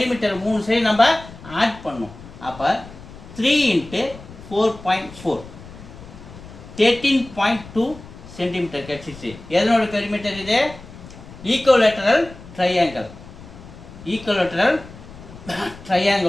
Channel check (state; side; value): noise; left; rumble, 17 dB below the sound